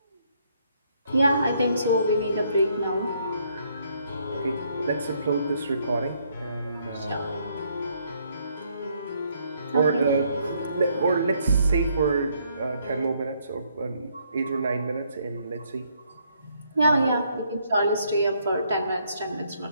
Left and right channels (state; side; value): inverted; both; correlation -0.70